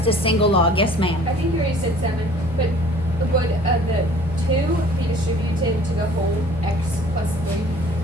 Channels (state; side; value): normal; both; correlation 0.51